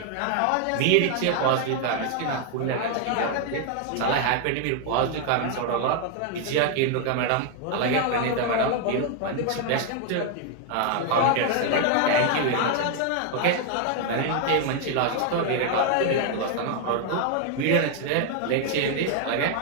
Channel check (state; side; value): different; both; correlation 0.00